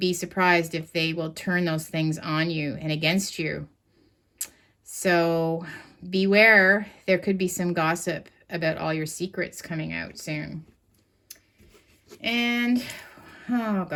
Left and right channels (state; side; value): identical; both; correlation 1.00